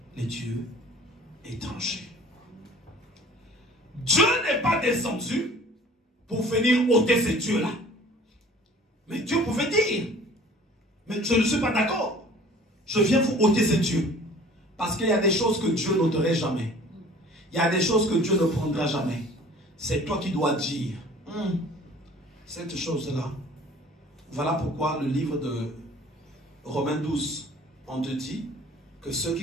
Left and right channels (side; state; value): both; normal; correlation 0.48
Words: les dieux étrangers. Dieu n'est pas descendu pour venir ôter ces dieux-là. Mais Dieu pouvait dire, mais je ne suis pas d'accord. Je viens vous ôter ces dieux. Parce qu'il y a des choses que Dieu n'ôterait jamais. Il y a des choses que Dieu ne prendra jamais. C'est toi qui dois dire, cette chose-là. Voilà pourquoi le livre de Romains 12, on te dit que ceux